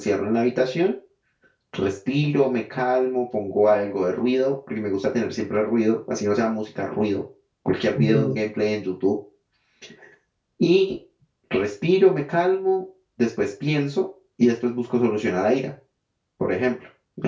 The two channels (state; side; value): identical; both; correlation 1.00